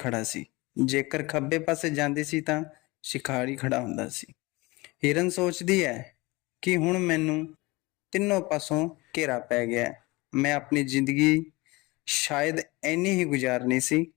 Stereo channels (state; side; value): quieter; right; 23.2 dB